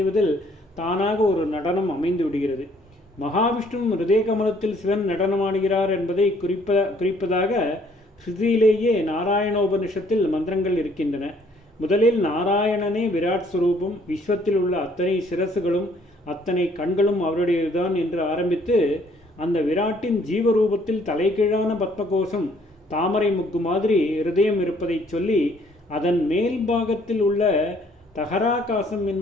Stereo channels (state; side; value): normal; both; correlation 0.63